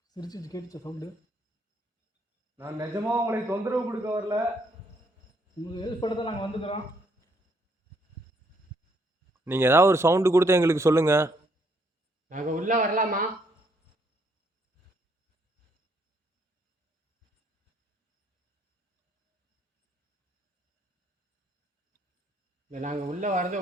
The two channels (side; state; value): both; normal; correlation 0.70